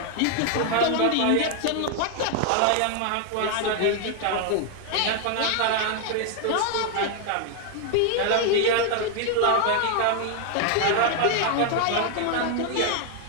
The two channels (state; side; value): different; both; correlation 0.00